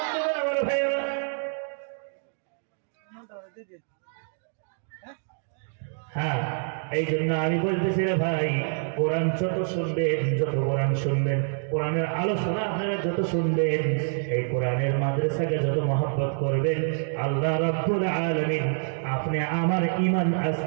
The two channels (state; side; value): silent; left; digital silence